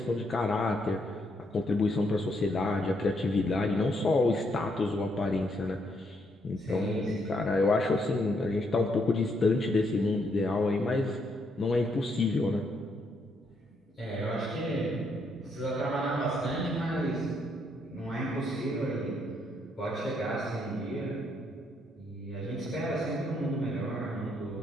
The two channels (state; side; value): normal; both; correlation 0.74